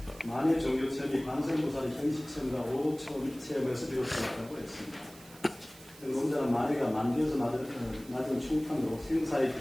만의 종교 체험이 관세음보살의 현실 체험과 오초 체험에서 비롯되었다고 했습니다. 논자는 만해가 만디에서 맞은 충판으로 생사에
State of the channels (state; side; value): noise; right; hiss, 21 dB below the sound